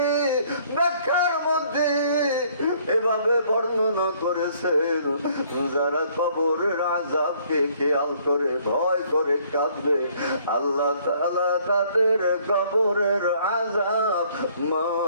ব্যাখ্যার মধ্যে এভাবে বর্ণনা করেছেন, যারা কবরের আযাবকে খেয়াল করে ভয় করে কাঁদবে, আল্লাহ তাআলা তাদের কবরের আযাব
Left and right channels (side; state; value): both; inverted; correlation -0.62